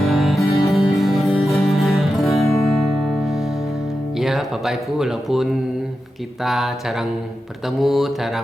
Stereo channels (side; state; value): both; normal; correlation 0.91